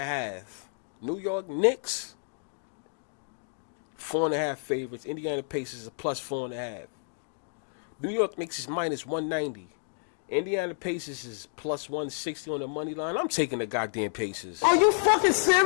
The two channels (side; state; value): right; silent; digital silence